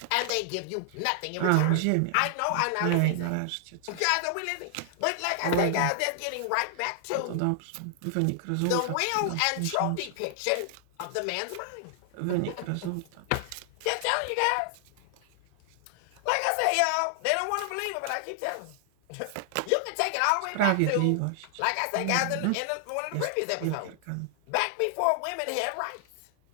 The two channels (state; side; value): different; both; correlation 0.00